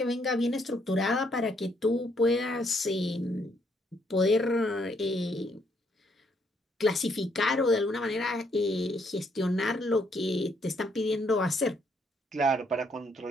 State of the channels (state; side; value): normal; both; correlation 0.71